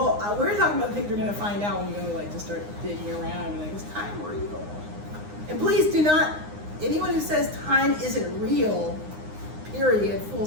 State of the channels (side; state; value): left; late; 9.7 ms